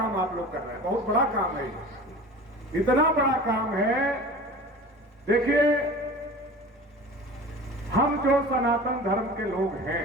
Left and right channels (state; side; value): normal; both; correlation 0.38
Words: आप लोग कर रहे हैं। बहुत बड़ा काम है, इतना बड़ा काम है। देखिए, हम जो सनातन धर्म के लोग हैं,